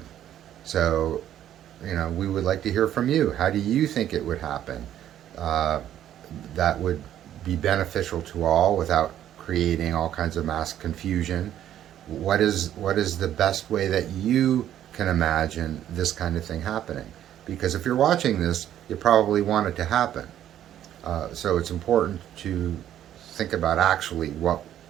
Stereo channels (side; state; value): left; quieter; 11.3 dB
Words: So, we would like to hear from you. How do you think it would happen? That would be beneficial to all without creating all kinds of mass confusion. What is the best way that you can imagine this kind of thing happening? Because if you're watching this, you probably want it to happen. So it's important to think about actually what